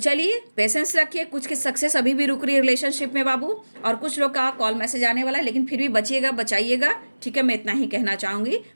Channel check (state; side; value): inverted; both; correlation -1.00